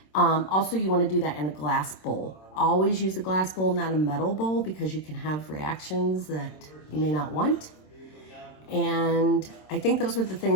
Also, you want to do that in a glass bowl. Always use a glass bowl, not a metal bowl, because you can have reactions that you may not want. And I think those were the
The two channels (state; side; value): late; right; 26 ms